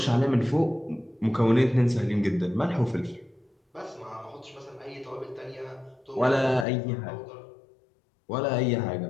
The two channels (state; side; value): drops out; right; at 6.7 s